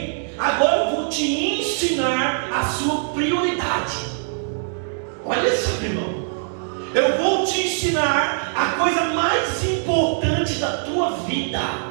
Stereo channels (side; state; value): left; silent; digital silence